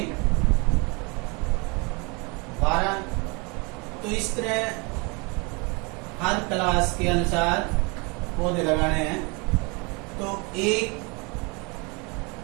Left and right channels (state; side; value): quieter; left; 29.9 dB